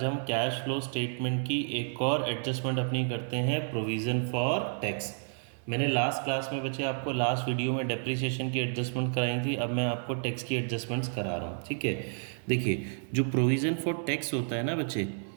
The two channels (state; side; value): silent; left; 57 dB below the other